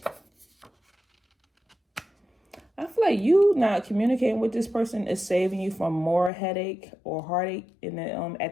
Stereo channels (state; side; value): drops out; right; at 6.3 s